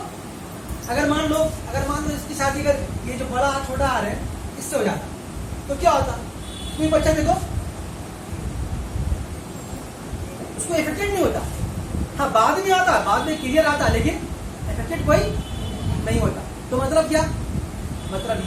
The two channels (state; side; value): identical; both; correlation 1.00